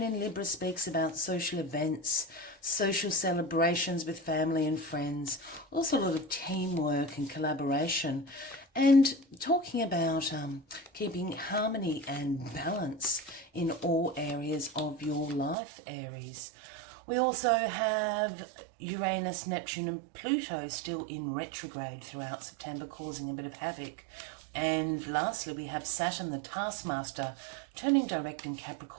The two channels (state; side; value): drops out; left; at 15.6 s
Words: in Libra speaks about social events, social celebrations with family and friends, also a lot of teamwork and collaboration, and talking about keeping harmony and balance in all areas of your life, Aries. We also have Uranus, Neptune and Pluto still in retrograde throughout September, causing a bit of havoc. And lastly, we have Saturn, the taskmaster, turning direct in